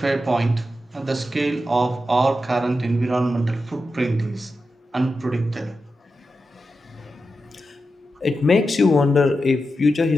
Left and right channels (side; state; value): both; normal; correlation 0.89